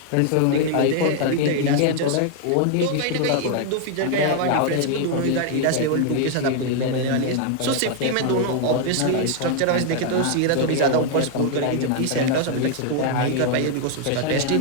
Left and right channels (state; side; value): different; both; correlation 0.00